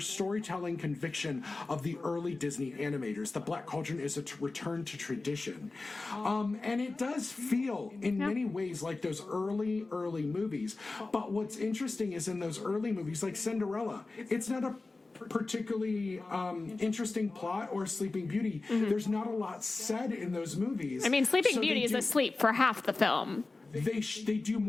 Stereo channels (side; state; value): right; quieter; 3.5 dB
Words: conviction of the early Disney animators. The Black Cauldron is a return to tradition. And it does feel, in many ways, like those early movies. But what's interesting is in those early movies, like Cinderella, it's not a particularly interesting plot, or Sleeping Beauty. There's not a lot said in those movies. I mean, Sleeping Beauty is asleep for half the film. They do